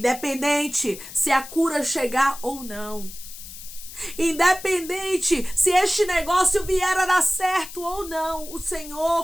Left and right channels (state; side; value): noise; left; hiss, 14 dB below the sound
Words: se a cura chegar ou não. Independente se este negócio vier a dar certo ou não, o